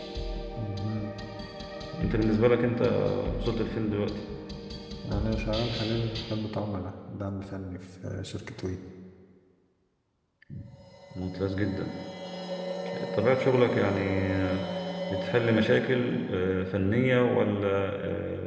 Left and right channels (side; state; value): both; identical; correlation 1.00